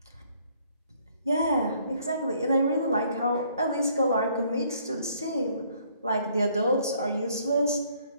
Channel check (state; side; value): inverted; both; correlation -0.64